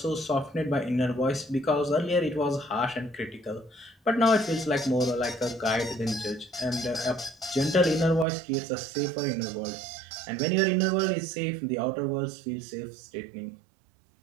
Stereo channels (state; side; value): drops out; left; at 8.2 s